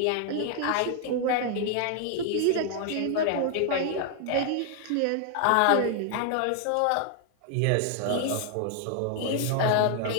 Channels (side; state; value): both; different; correlation 0.00